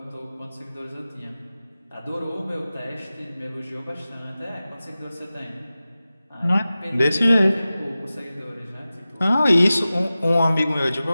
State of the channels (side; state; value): both; inverted; correlation -0.96